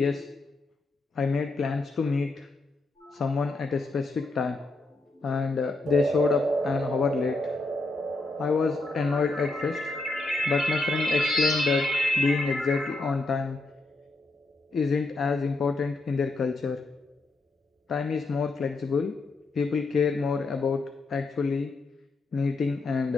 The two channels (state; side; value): quieter; right; 3.1 dB